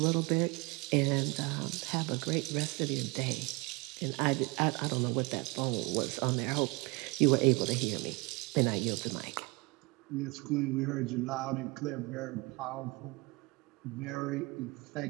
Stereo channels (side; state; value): left; quieter; 26.3 dB